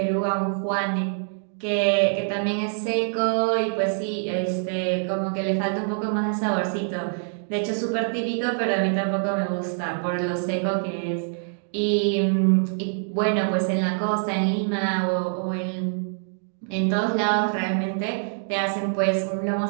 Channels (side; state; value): left; silent; digital silence